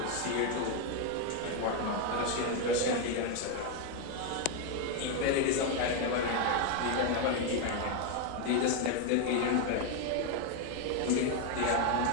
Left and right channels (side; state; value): both; different; correlation 0.01